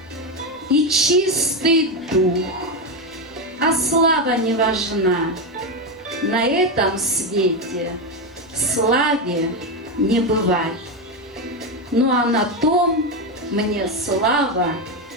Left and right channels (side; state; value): both; normal; correlation 0.10